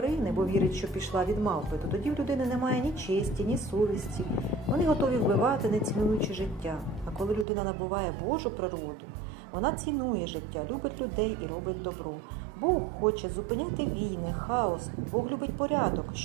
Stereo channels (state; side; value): drops out; left; at 7.5 s